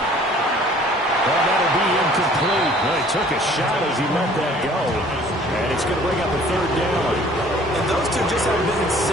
Well, that'll be incomplete. Well, he took a shot as he let that go. And it's going to bring up a 3rd down. And those two just haven't been in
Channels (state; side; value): normal; both; correlation 0.53